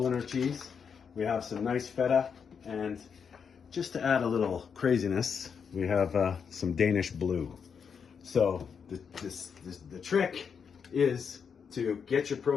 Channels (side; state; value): right; quieter; 6.5 dB